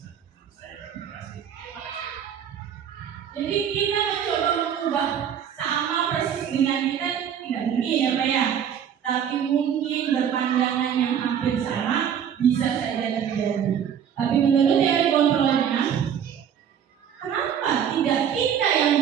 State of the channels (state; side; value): quieter; left; 8.6 dB